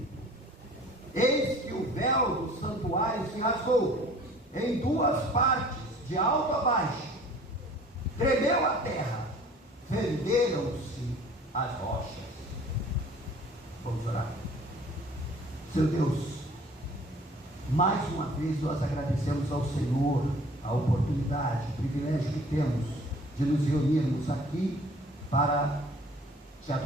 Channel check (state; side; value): normal; both; correlation 0.50